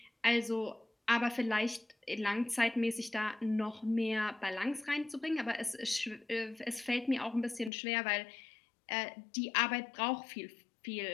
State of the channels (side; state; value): right; drops out; at 7.7 s